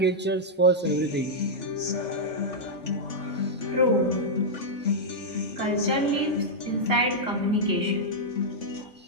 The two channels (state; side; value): normal; both; correlation -0.06